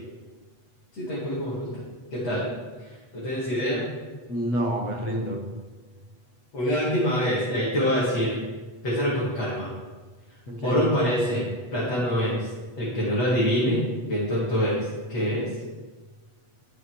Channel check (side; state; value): right; late; 8.2 ms